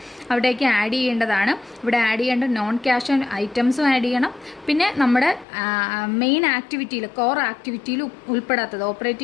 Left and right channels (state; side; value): drops out; right; at 5.5 s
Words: അവിടേക്ക് ആഡ് ചെയ്യേണ്ടതാണ്. ഇവിടെ ആഡ് ചെയ്യേണ്ട നോൺ ക്യാഷ് ഐറ്റംസും ആഡ് ചെയ്യണം. പിന്നെ നമ്മുടെ മെയിൻ ആക്ടിവിറ്റിയിൽ, കോർ ആക്ടിവിറ്റിയിൽ ഉൾപ്പെടാത്തത്,